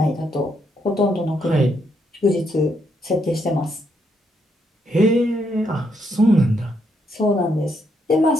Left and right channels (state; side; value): normal; both; correlation 0.76